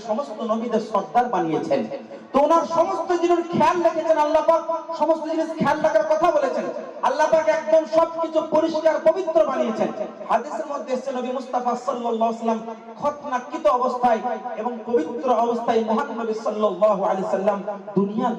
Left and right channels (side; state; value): both; identical; correlation 1.00